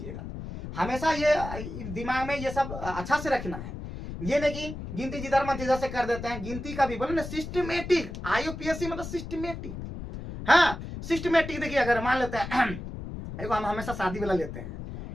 हमेशा ये दिमाग में ये सब अच्छा से रखना है। ये नहीं कि गिनती जिधर मन तिधर से कर देते हैं। गिनती का भी बोले ना सिस्टमेटिक, IUPAC मतलब सिस्टमेटिक। हाँ सिस्टमेटिक। देखिए अगर मान लेते हैं देखो, हम हमेशा शादी वाला लेते हैं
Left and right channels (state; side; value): noise; left; rumble, 9 dB below the sound